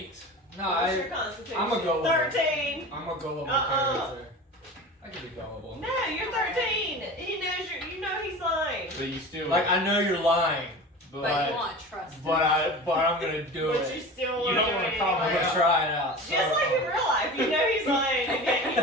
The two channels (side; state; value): both; normal; correlation 0.34